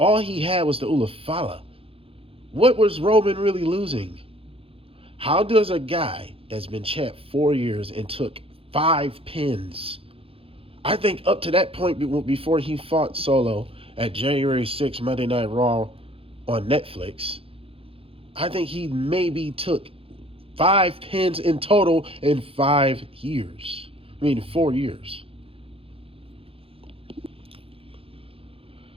he had was the Ulafala. What was Roman really losing? How does a guy that's been champ 4 years and took 5 pins, I think up to that point before he fought Solo at January 6th Monday Night Raw on Netflix, I think he maybe took 5 pins in total in 5 years. I mean, 4 years.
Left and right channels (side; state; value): left; late; 0.27 ms